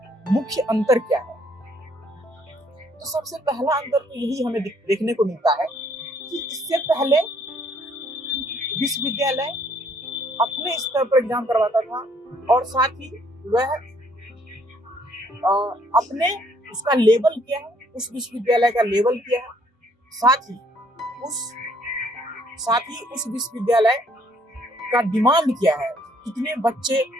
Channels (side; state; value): both; normal; correlation 0.65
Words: मुख्य अंतर क्या है? तो सबसे पहला अंतर तो यही हमें देखने को मिलता है कि इससे पहले विश्वविद्यालय अपने स्तर पर एग्जाम करवाता था और साथ ही वह अपने उसका लेवल क्या है, उस विश्वविद्यालय का लेवल क्या है, साथ ही उस विश्वविद्यालय का डिमांड क्या है, कितने बच्चे